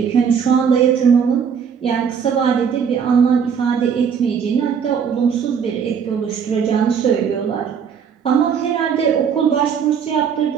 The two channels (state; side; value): quieter; left; 7.0 dB